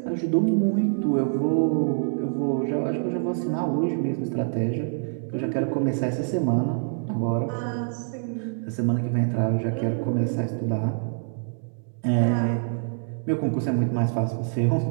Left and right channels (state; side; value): silent; left; digital silence